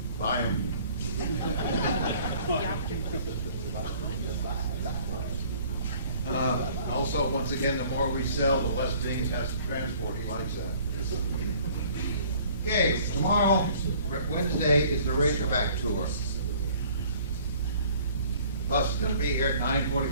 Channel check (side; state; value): both; inverted; correlation -0.54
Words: Buy them. Also, once again, the more we sell, the less things has to transport. He likes that. Okay, tomorrow, Wednesday, is the Razorback Tour. The bus is going to be here at